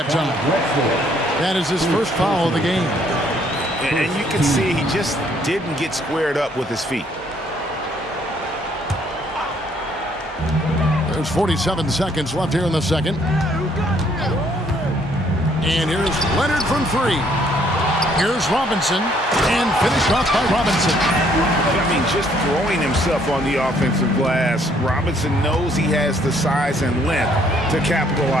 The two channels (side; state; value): both; normal; correlation 0.65